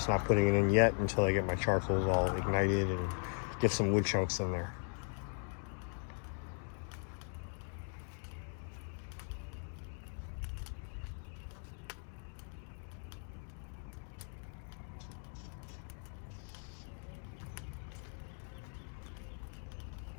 not putting it in yet until I get my charcoals all ignited and get some wood chunks in there.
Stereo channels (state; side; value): silent; right; 52 dB below the other